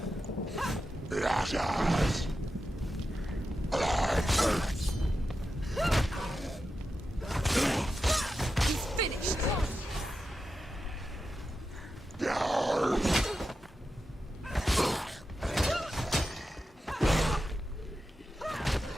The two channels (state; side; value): normal; both; correlation 0.90